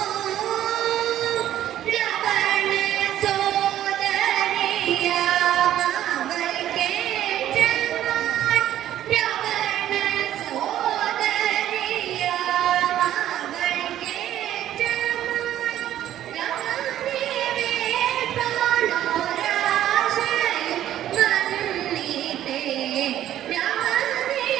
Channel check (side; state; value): left; quieter; 12.1 dB